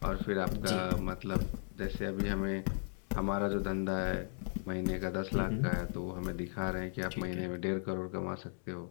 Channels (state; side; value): silent; right; 54 dB below the other